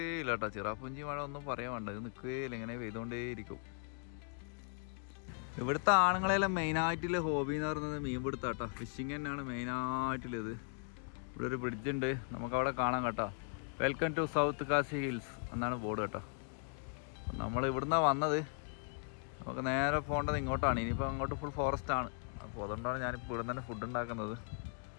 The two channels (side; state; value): right; silent; 52 dB below the other